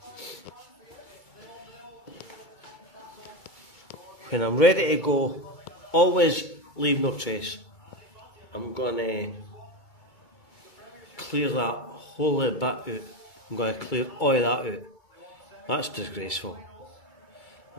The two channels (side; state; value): right; late; 2.2 ms